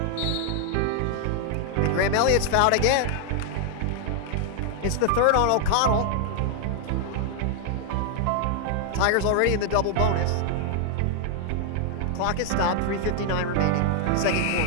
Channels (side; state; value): both; different; correlation 0.00